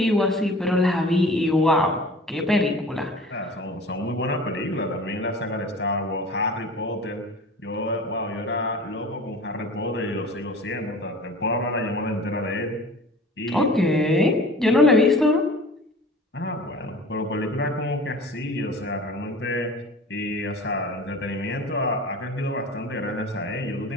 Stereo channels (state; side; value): normal; both; correlation 0.42